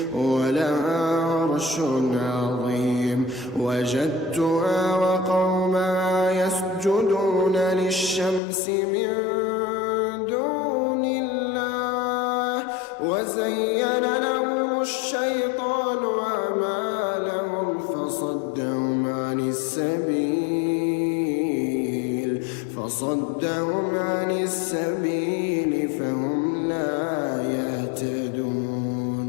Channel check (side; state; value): right; drops out; at 8.4 s